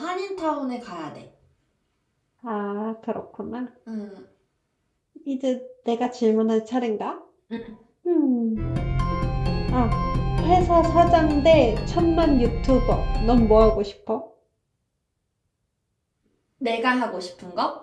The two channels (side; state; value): both; identical; correlation 1.00